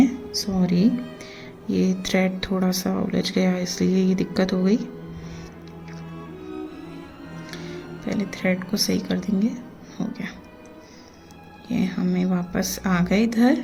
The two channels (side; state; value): both; identical; correlation 1.00